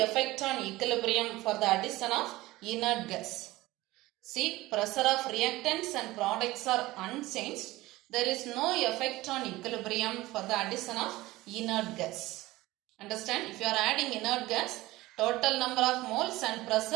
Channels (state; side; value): quieter; left; 18.6 dB